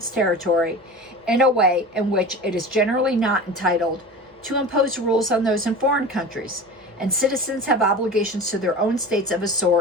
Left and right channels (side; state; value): both; normal; correlation 0.33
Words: territory in a way in which it is generally not entitled to impose rules on those in foreign countries, and citizens have obligations to their own states of a